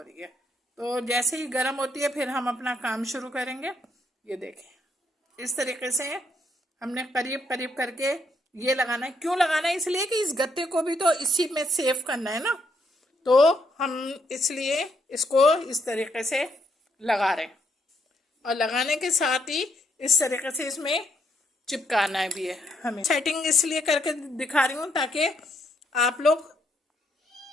रही है। तो जैसे ही गरम होती है फिर हम अपना काम शुरू करेंगे। ये देखें, इस तरीके से हमने करीब करीब करके ये लगाना है। क्यों लगाना है, इसलिए कि इस गत्ते को भी तो इसी में सेव करना है ना, तो हम इसलिए इसको इस तरीके से लगा रहे हैं। और लगाने के साथ ही इस तरीके से इसमें चिपकाना भी है हमें। सेटिंग इसलिए करके दिखा रही हूँ ताकि आप लोग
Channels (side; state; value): both; normal; correlation 0.74